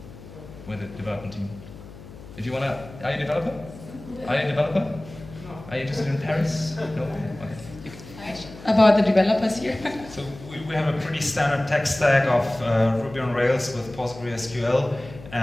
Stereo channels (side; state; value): left; noise; hum, 16 dB below the sound